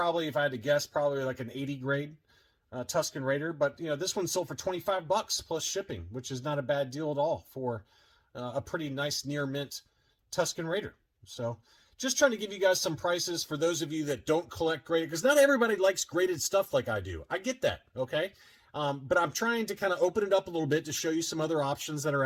if I had to guess, probably like an 80 grade Tuscan Raider. But this one sold for $25 plus shipping, which is not a bad deal at all for a pretty nice near mint Tuscan Raider. So just trying to give you guys some prices for those of you that don't collect graded, because not everybody likes graded stuff like I do. I get that, okay? But I'm trying to kind of open it up a little bit to show you some other options that are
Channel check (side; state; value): both; identical; correlation 1.00